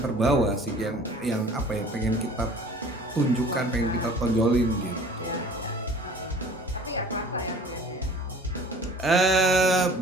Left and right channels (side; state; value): both; normal; correlation 0.47